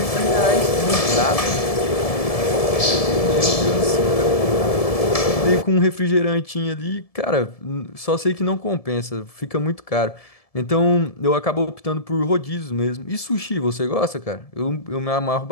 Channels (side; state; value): right; late; 1.7 ms